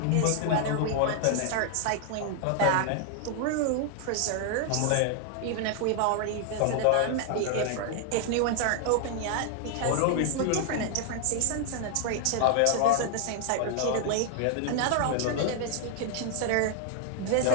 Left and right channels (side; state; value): both; different; correlation 0.00